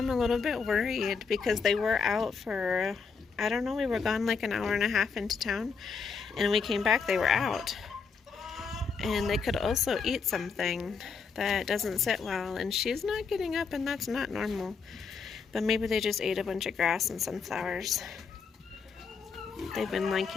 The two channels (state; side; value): quieter; right; 5.4 dB